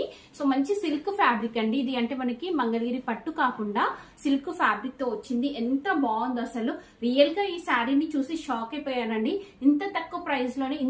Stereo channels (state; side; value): identical; both; correlation 1.00